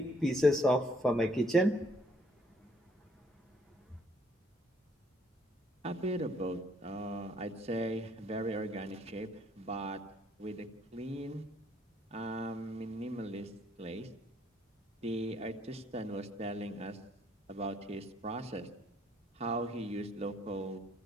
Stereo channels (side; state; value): both; normal; correlation 0.67